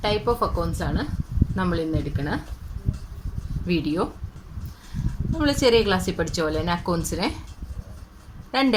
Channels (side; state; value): both; identical; correlation 1.00